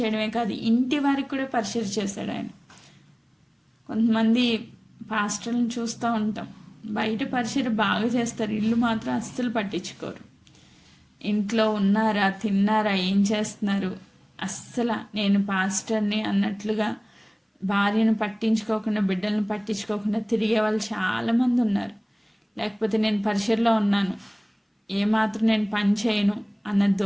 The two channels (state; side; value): identical; both; correlation 1.00